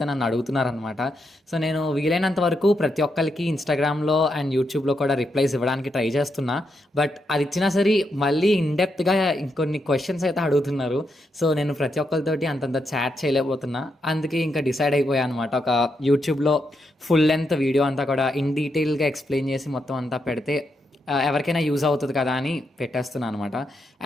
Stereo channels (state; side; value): normal; both; correlation 0.82